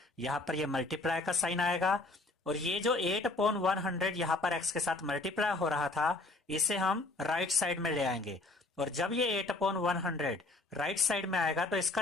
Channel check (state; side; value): quieter; right; 3.0 dB